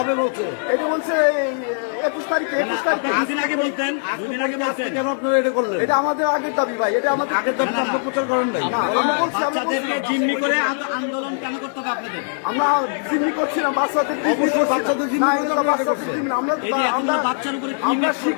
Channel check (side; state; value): right; silent; 56 dB below the other